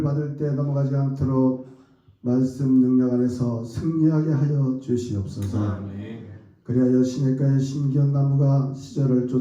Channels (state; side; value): identical; both; correlation 1.00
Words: 받을 때 넘어가지 않도록 말씀 능력 안에서 승리하게 하여 주시옵소서. 아멘. 그리하여 시냇가의 심기운 나무가 시절을